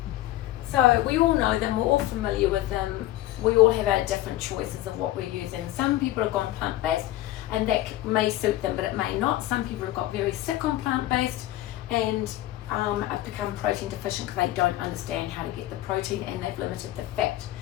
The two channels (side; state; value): right; quieter; 15.3 dB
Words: So we all know them, we're all familiar with them. We all have our different choices of what we're using. Some people have gone plant-based, and that may suit them, but it may not. Some people have got very sick on plant-based, and have become protein deficient because they don't understand how to get the protein, and they've limited the fat.